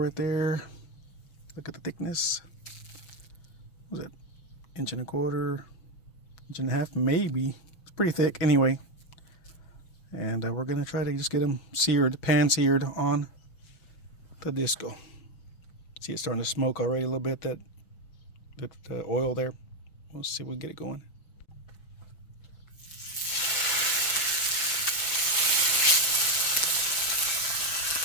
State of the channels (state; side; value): late; right; 6.1 ms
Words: there. Look at the thickness. What was it? 1.25 inches, 1.5 inches, maybe. It's pretty thick anyway. And we're gonna try to just get them seared, pan seared on the disco. See, it's starting to smoke already a little bit, that oil there. Let's see if we can get it going.